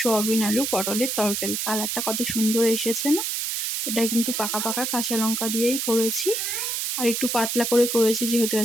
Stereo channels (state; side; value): noise; right; hiss, 1 dB below the sound